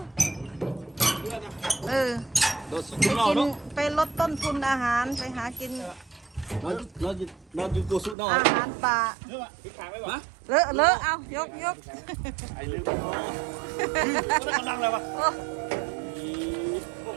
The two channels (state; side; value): drops out; left; at 8.2 s